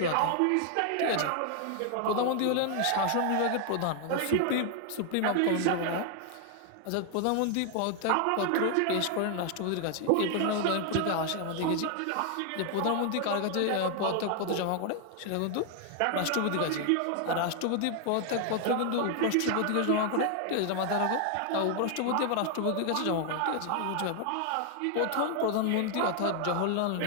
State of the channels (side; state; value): both; different; correlation 0.00